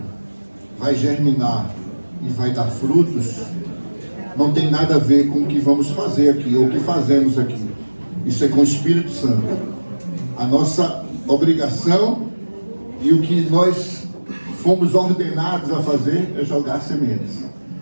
vai germinar e vai dar frutos, não tem nada a ver com o que vamos fazer aqui, ou o que fazemos aqui. Isso é com o Espírito Santo. A nossa obrigação e o que nós fomos ordenados a fazer é jogar sementes.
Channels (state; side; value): inverted; both; correlation -1.00